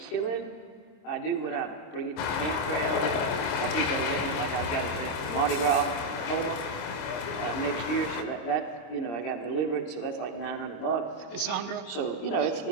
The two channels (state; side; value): late; right; 26 ms